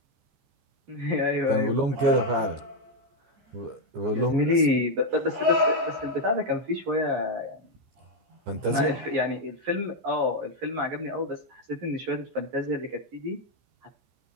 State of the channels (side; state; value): left; late; 14 ms